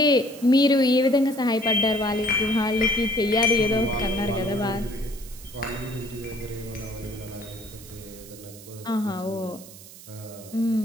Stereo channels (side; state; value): right; noise; hiss, 18 dB below the sound